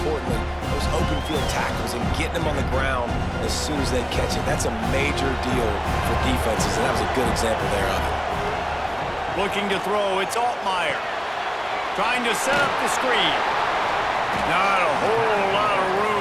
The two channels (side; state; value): both; identical; correlation 1.00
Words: those open field tackles and getting them on the ground as soon as they catch it. That's a major deal for defenses, and that was a good example there of it. Looking to throw, it's Altmaier. Trying to set up the screen. Not a whole lot of